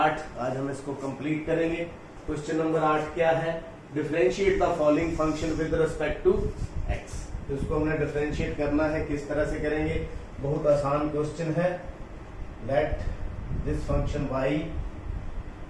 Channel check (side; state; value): both; identical; correlation 1.00